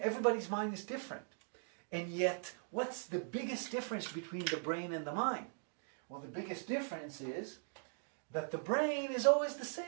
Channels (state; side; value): silent; left; digital silence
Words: mind is different. And yet, what's the biggest difference between the brain and the mind? Well, the biggest difference is that the brain is always the